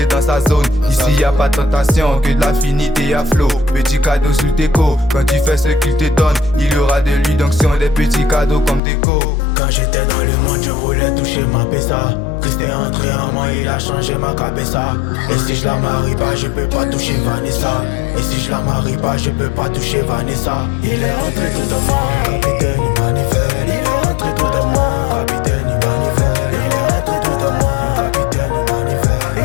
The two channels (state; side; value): drops out; right; at 8.8 s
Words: dans sa zone. Ici y a pas de tentation, que de l'affinité à flot. Petit cadeau sur tes co, quand tu fais ce qu'il te donne, il y aura de l'illusion, des petits cadeaux comme déco. Quand j'étais dans le monde, je voulais toucher ma pessa. Christ est entré en moi, il a changé ma cabessa. Et si je la marie pas, je peux pas toucher Vanessa. Et si je la marie pas, je peux pas toucher Vanessa. Il est entré tout en moi, le capitaine il manivelle. Il est entré tout en moi,